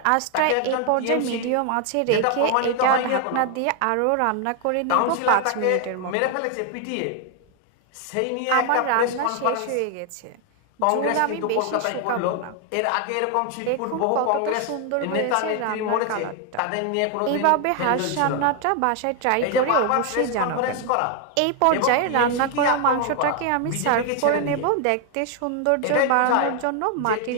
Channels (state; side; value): different; both; correlation 0.01